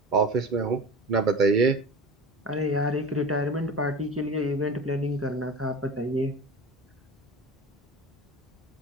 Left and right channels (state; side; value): normal; both; correlation 0.33